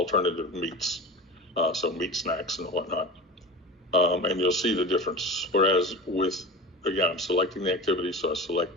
meats, so meat snacks and whatnot. And you'll see the difference. Whereas with, again, I'm selecting the activity, so I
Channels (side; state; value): both; normal; correlation 0.31